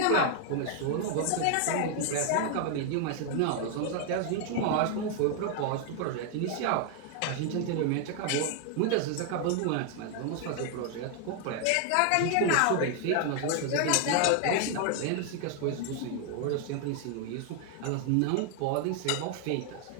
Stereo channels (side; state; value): both; different; correlation 0.00